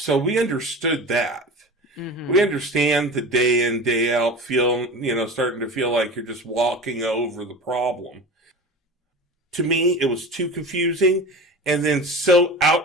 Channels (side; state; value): both; normal; correlation 0.32